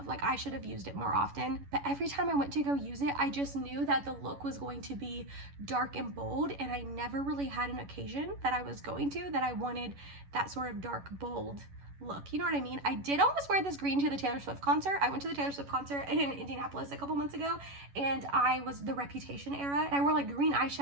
Like I should have used it more often, but every time I went to go use it, I just knew that the look was going to be dark and bold, and I never really had an occasion that I was going to that I wanted that sort of dark, bold look. You know what I mean? I did almost wear this green to the Taylor Swift concert. I went to the Taylor Swift concert in Indianapolis a couple months ago, and I was the Reputation era. And I wore like green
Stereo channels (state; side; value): late; left; 11 ms